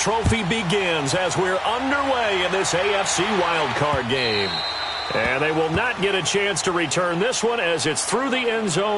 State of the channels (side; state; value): both; identical; correlation 1.00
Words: begins as we're underway in this AFC Wild Card game. And they will not get a chance to return this one as it's through the end